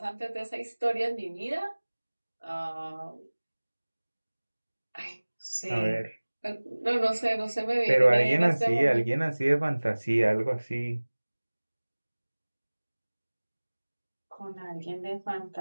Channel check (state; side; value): inverted; both; correlation -1.00